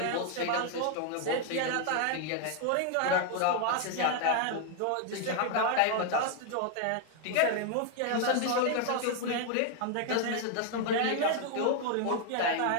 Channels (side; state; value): both; different; correlation 0.00